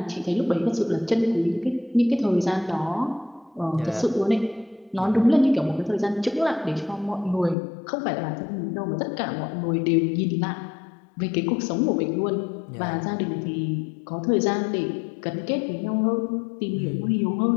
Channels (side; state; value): right; drops out; at 7.6 s